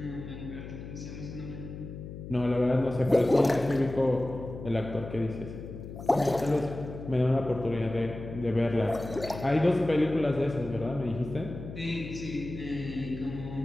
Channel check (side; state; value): left; noise; hum, 11 dB below the sound